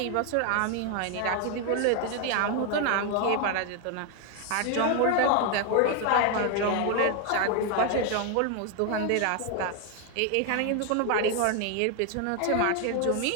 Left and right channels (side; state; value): both; different; correlation 0.01